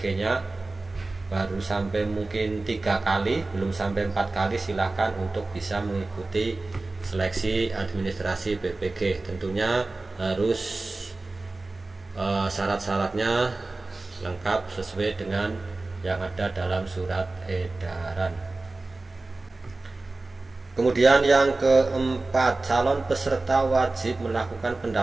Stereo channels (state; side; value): quieter; left; 3.2 dB